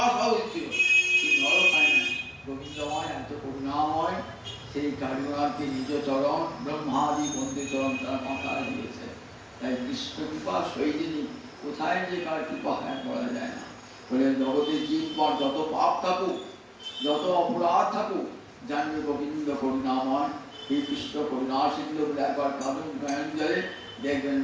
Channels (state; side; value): identical; both; correlation 1.00